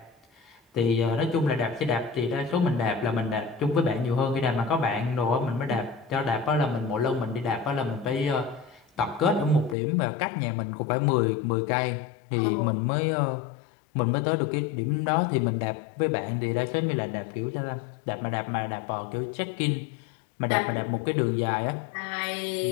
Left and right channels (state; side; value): drops out; right; at 9.8 s